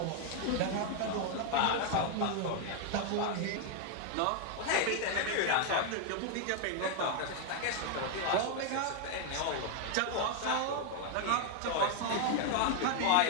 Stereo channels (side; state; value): both; different; correlation 0.00